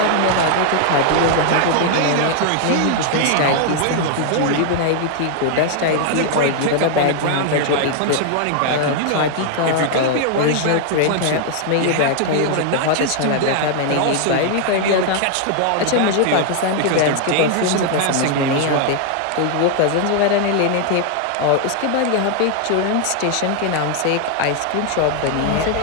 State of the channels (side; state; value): both; different; correlation 0.00